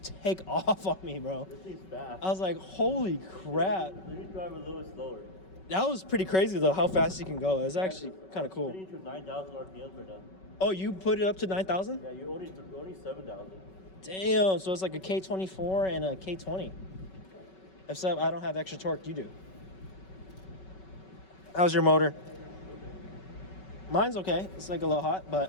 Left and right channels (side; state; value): right; late; 5.3 ms